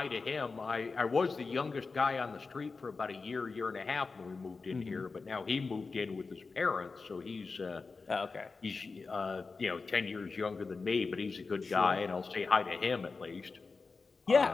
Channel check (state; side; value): quieter; right; 4.3 dB